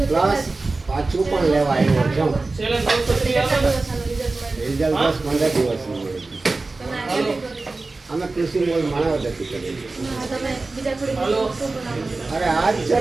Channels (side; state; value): left; quieter; 3.5 dB